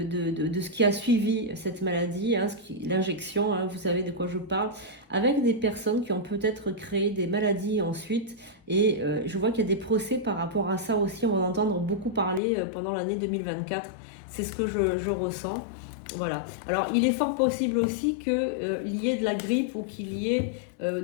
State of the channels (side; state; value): right; drops out; at 12.4 s